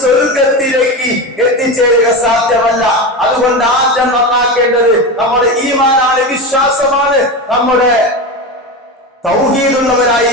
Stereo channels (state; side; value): normal; both; correlation 0.21